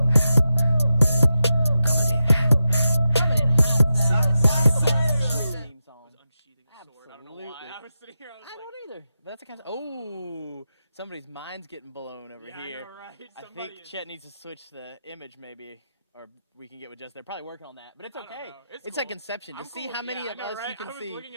Theme song. Unsheathing a sword. I don't know why. Absolutely. I was sitting here. I was I like, don't either. But that's the kind of. Oh, somebody's mind's getting blown over yeah, here. I know, right? I Somebody think is- Chet needs to switch the image, maybe, or we can get with just. They're probably working on that, but it's I don't okay. know. It's cool. like Inception. To I'm see cool how with- many yeah, of I know, us right? you can I was see looking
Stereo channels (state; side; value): inverted; both; correlation -0.90